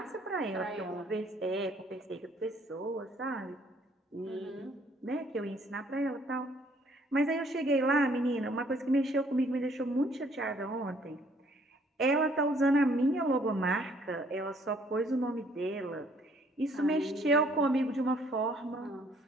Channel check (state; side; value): normal; both; correlation 0.63